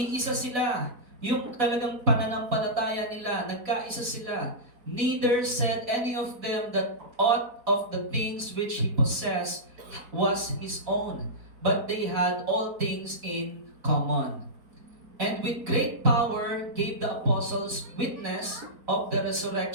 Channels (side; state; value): left; late; 4.1 ms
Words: sila. Yung talagang pananampalataya nila, nagkaisa sila. Neither said any of them that aught of the things which he possessed was his own, but they had all things in common. And with great power gave the apostles witness of the